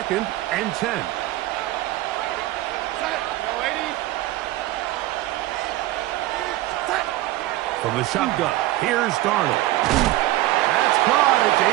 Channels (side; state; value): left; quieter; 16.5 dB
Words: and 10. From the shotgun, here's Darnold. That's caught. It's